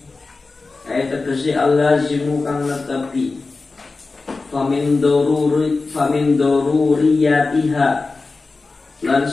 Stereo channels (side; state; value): right; quieter; 3.8 dB